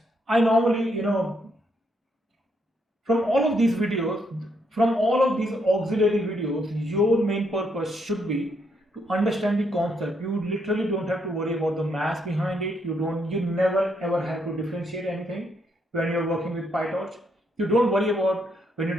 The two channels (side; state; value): both; normal; correlation 0.75